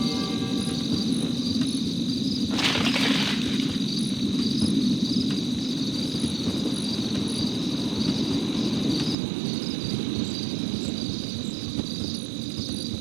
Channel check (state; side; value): drops out; left; at 9.2 s